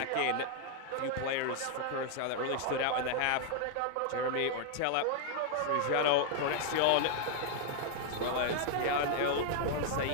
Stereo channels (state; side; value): different; both; correlation 0.00